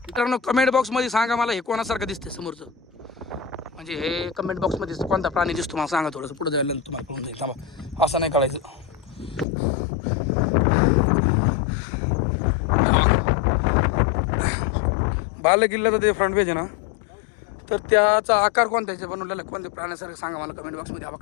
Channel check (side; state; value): right; drops out; at 9.5 s